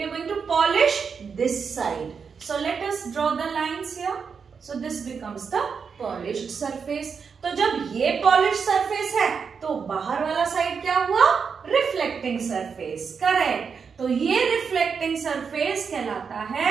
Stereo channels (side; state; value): left; quieter; 6.0 dB